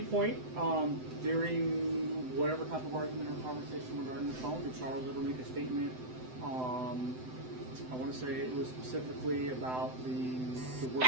point during whatever type of argument or conversation regarding the phone, did Charles ever make a statement? I want to say it was specifically about the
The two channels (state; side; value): late; left; 7.9 ms